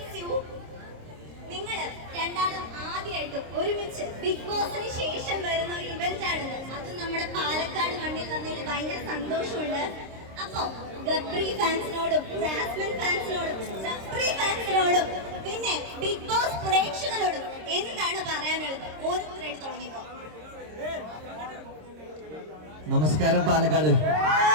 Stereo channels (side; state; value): left; late; 26 ms